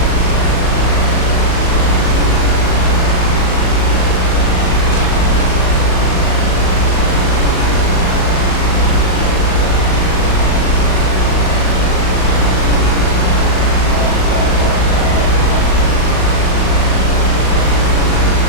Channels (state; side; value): late; right; 38 ms